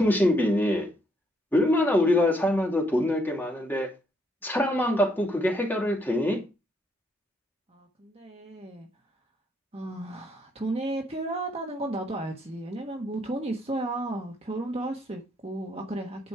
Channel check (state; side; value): normal; both; correlation 0.72